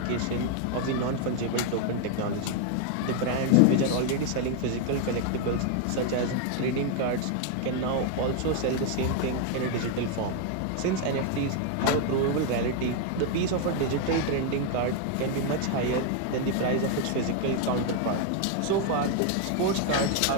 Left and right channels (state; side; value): different; both; correlation 0.01